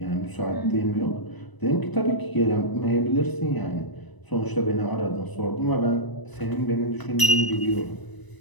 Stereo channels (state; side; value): late; right; 1.0 ms